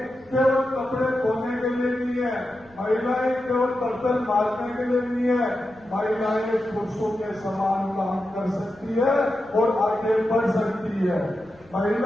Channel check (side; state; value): left; noise; rumble, 28 dB below the sound